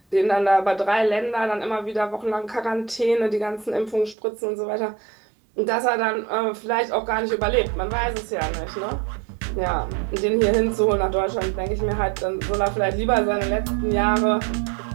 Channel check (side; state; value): left; drops out; at 4.2 s